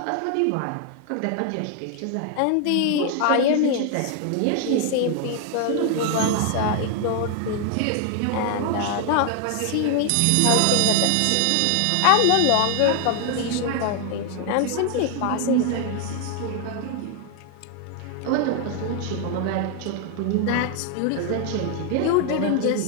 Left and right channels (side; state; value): both; different; correlation 0.00